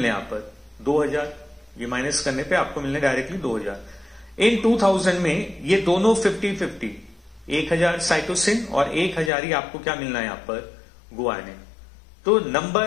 यहां पर 2000। ये माइनस करने पे आपको मिलने डायरेक्टली 2000। इन 2000 में ये दोनों 50-50, 1000 साइटोसिन और 1000 ही आपको क्या मिलना है यहां पर गुआनिन। तो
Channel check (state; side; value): drops out; right; at 9.3 s